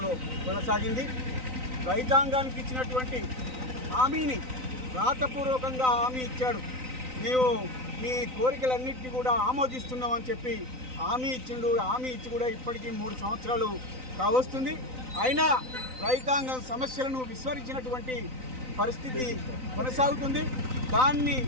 కొనసాగింది. రైతాంగానికి ఇచ్చినటువంటి హామీని రాతపూర్వకంగా హామీ ఇచ్చాడు. మేము మీ కోరికలన్నింటినీ కూడా ఆమోదిస్తున్నామని చెప్పి హామీ ఇచ్చిండు. హామీ ఇచ్చి కూడా ఇప్పటికీ 3 సంవత్సరాలు కావస్తుంది. అయినా రైతాంగం సమస్యలను విస్మరించినటువంటి పరిస్థితి కొనసాగుతుంది. దాన్ని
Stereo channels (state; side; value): late; left; 3.9 ms